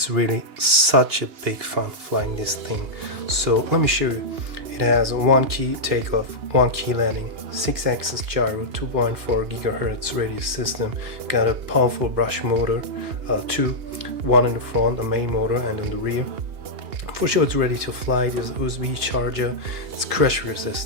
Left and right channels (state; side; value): late; left; 2.8 ms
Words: really such a big fun flying this thing. So let me show you. It has a 1 key takeoff, 1 key landing, 6-axis gyro, 2.4 GHz radius system, got a powerful brush motor, one in the front, a main motor, and in the rear. For sure it's ready to fly. There's USB charger, it's crash